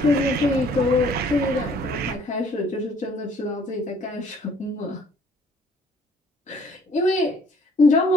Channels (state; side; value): normal; both; correlation 0.59